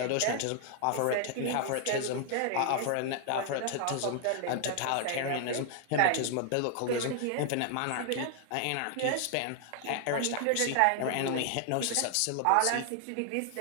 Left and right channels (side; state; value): both; different; correlation 0.00